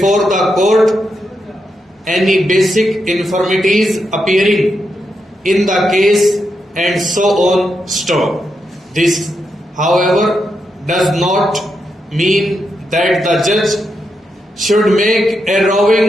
the court, any basic infirmities appearing in the case, and so on. Stop. This, however, does not mean that the judge should make a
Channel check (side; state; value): both; normal; correlation 0.84